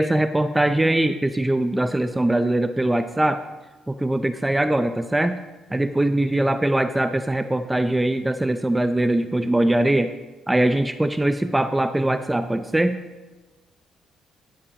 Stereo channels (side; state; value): both; normal; correlation 0.97